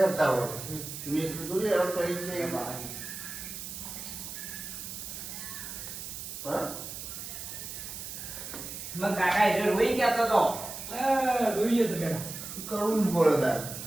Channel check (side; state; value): right; noise; hiss, 9 dB below the sound